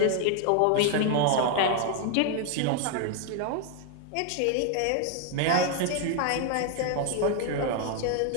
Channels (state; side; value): different; both; correlation 0.00